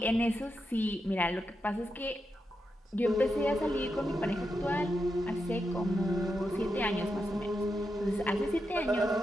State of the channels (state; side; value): normal; both; correlation 0.86